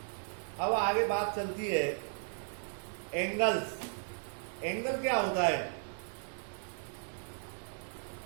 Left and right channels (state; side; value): silent; left; 54 dB below the other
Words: अब आगे बात चलती है एंगल्स। एंगल क्या होता है?